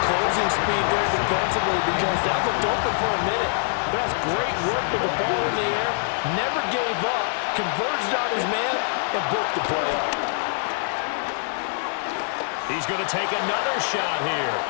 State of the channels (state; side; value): silent; right; digital silence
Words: closing speed there defensively because that looked open for a minute. But that's great work with the ball in the air. Never gave up, converged on his man, and broke the play up. He's going to take another shot here.